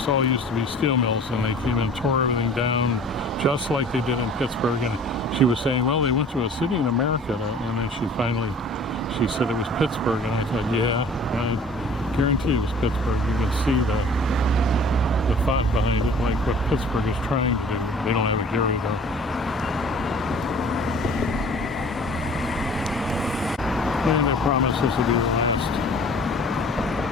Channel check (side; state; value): both; normal; correlation 0.47